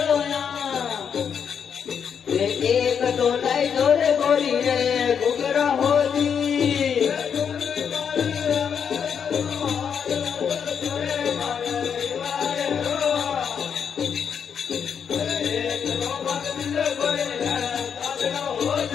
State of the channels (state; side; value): quieter; right; 7.3 dB